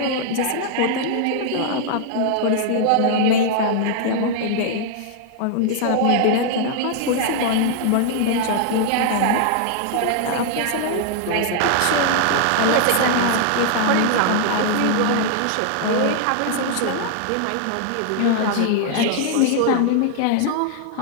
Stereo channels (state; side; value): different; both; correlation 0.00